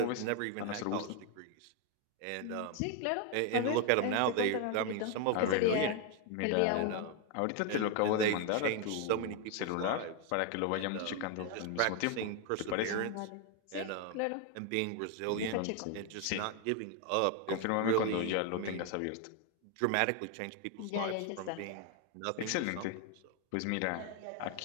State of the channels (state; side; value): different; both; correlation 0.01